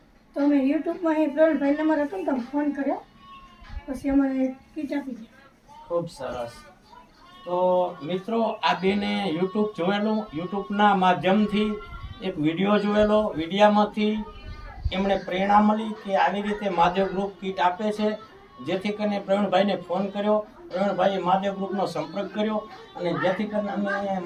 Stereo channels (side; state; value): both; identical; correlation 1.00